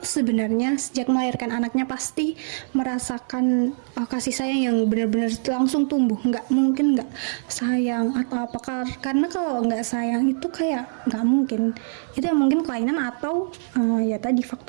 sebenarnya sejak melahirkan anaknya pasti merasakan kasih sayang yang benar-benar langsung tumbuh. Nggak mungkin nggak sayang atau apa, karena kalau nggak sayang itu kayak nggak mungkin. Itu mungkin kelainan atau ya tadi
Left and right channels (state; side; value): silent; left; digital silence